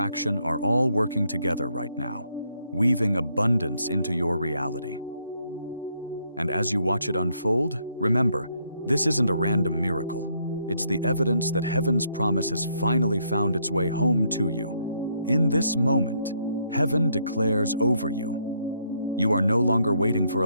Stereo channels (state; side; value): inverted; both; correlation -0.73